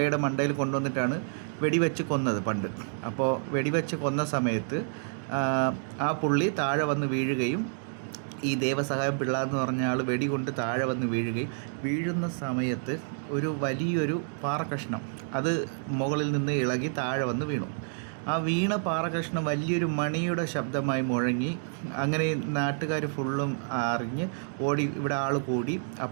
മണ്ടയിൽ കൊണ്ടുവന്നിട്ടാണ് വെടിവെച്ച് കൊന്നത് പണ്ട്. അപ്പോൾ വെടിവെച്ച് കൊന്ന സമയത്ത് ആ പുള്ളി താഴെ വന്ന് വീഴുകയും ഈ ദേവസഹായം പിള്ള എന്ന് പറഞ്ഞ ആൾ വെടികൊണ്ട് താഴെ വന്ന് വീഴുന്ന സമയത്ത് ഒരു വലിയൊരു പാറക്കഷ്ണം അത് മുകളിൽ നിന്ന് ഇളകി താഴെ വന്ന് വീണു. ആ വീണ പാറക്കഷ്ണം വലിയൊരു മണിയുടെ ശബ്ദമായി മുഴങ്ങി. അങ്ങനെ നാട്ടുകാർ ഫുള്ളും അറിഞ്ഞ് ഓടി, ഇവിടെ ആൾ കൂടി.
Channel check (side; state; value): left; silent; digital silence